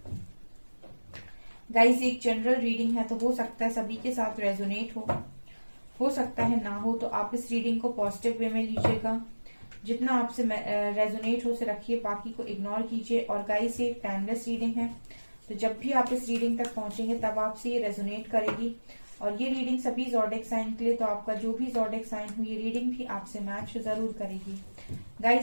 Guys, एक जनरल रीडिंग है तो हो सकता है सभी के साथ रेजोनेट हो सकता है ना हो, तो आप इस रीडिंग को पॉजिटिव वे में लीजिएगा। जितना आपसे रेजोनेट हो से रखिए, बाकी को इग्नोर कीजिए। और गाइस, ये टाइमलेस रीडिंग है, तो जब भी आप इस रीडिंग तक पहुंचेंगे तब आपसे ये रेजोनेट करेगी। और ये रीडिंग सभी ज़ोडिएक साइन के लिए, तो आपका जो भी ज़ोडिएक साइन हो ये रीडिंग भी आपसे मैच जरूर करेगी।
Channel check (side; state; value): both; inverted; correlation -1.00